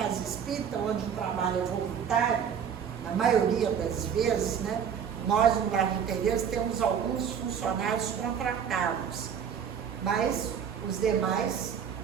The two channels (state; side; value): quieter; left; 7.7 dB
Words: espírita, onde o trabalho é voluntário, na maioria das vezes, né? Nós no Lar de Tereza temos alguns funcionários contratados, mas os demais